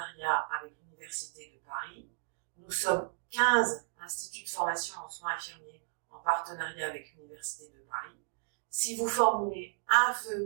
avec l'Université de Paris. Nous sommes 15 instituts de formation en soins infirmiers en partenariat avec l'Université de Paris. Si vous formulez un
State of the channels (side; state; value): left; silent; digital silence